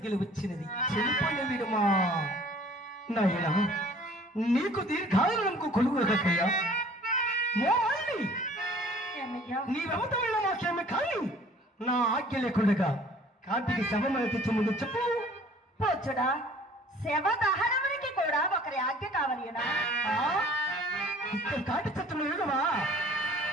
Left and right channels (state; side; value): normal; both; correlation 0.51